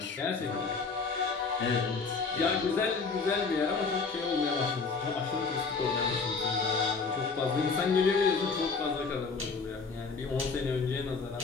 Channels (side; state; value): right; quieter; 4.6 dB